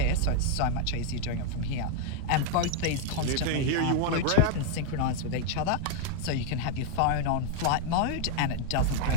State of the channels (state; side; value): different; both; correlation 0.00